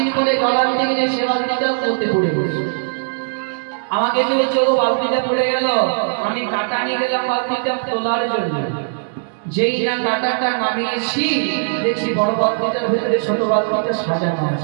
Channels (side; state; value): left; silent; digital silence